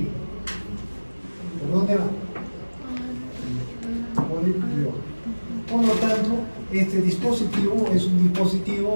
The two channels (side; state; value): both; inverted; correlation -1.00